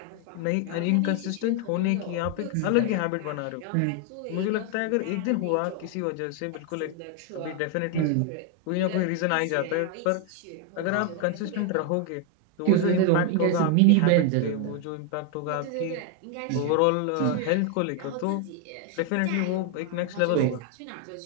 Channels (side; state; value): both; different; correlation 0.01